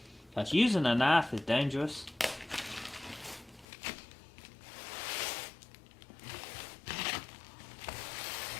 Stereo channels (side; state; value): right; drops out; at 3.7 s